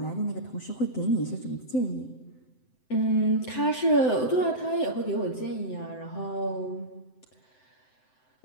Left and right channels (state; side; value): late; right; 7.8 ms